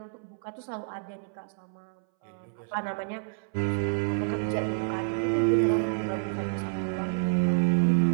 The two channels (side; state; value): left; silent; 59 dB below the other